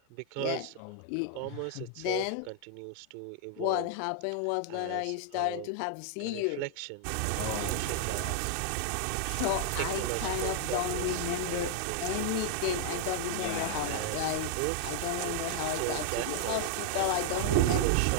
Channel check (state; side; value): different; both; correlation -0.01